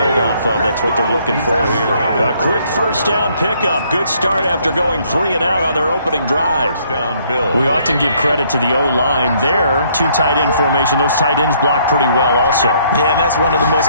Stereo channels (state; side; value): inverted; both; correlation -0.66